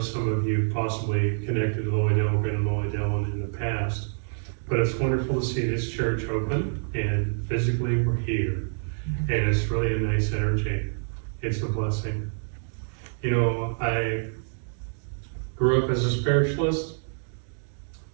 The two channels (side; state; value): left; silent; digital silence